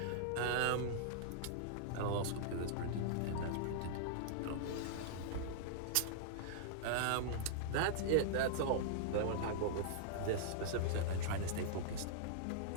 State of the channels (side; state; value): both; different; correlation -0.02